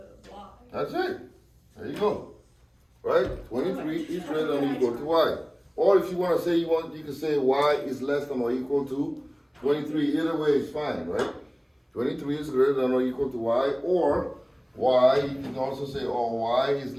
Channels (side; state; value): both; identical; correlation 1.00